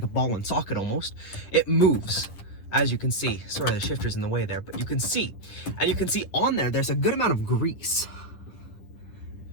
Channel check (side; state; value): right; late; 10 ms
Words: a ball and socket almost, it moves, as you can see. Sorry, the shifter's in the way there, but you can see. And you can see on there, there's a good amount of grease.